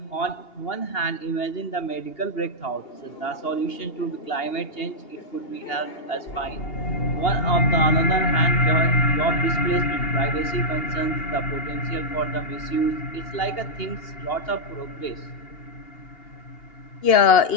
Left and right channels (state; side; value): late; right; 2.8 ms